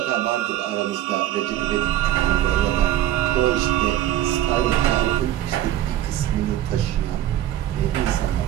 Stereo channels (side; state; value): left; quieter; 12.8 dB